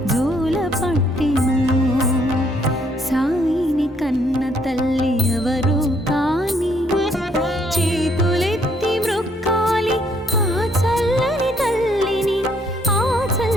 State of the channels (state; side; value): normal; both; correlation 0.68